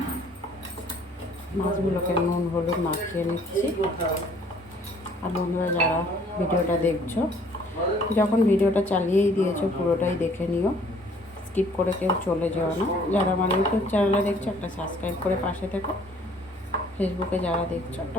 মাছগুলোকে নুন হলুদ মাখিয়ে নিচ্ছি। আর বন্ধুরা, যারা ভিডিওটা দেখছো, যখন ভিডিওটা চালিয়েই দিয়েছো পুরোটাই দেখে নিও, স্কিপ করে কেউ চলে যেও না। যারা আমার ইউটিউব চ্যানেলে দেখছো, একটা সাবস্ক্রাইব করে পাশে থেকো। ফেসবুকে যারা দেখছো,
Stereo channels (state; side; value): normal; both; correlation 0.58